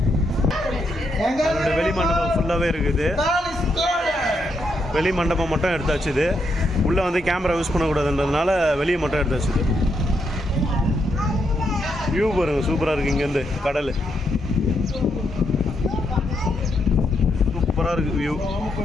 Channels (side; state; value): both; normal; correlation 0.79